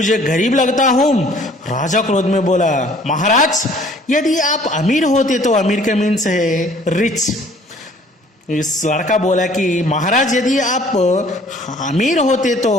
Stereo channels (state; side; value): normal; both; correlation 0.55